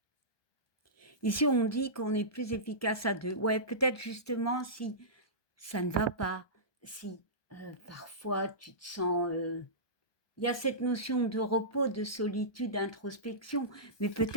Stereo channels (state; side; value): late; right; 1.2 ms